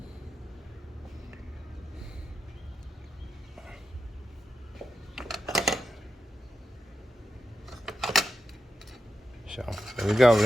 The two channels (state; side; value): normal; both; correlation 0.89